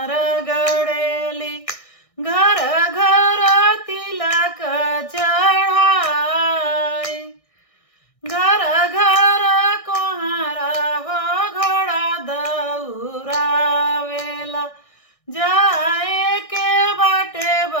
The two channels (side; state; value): right; late; 1.6 ms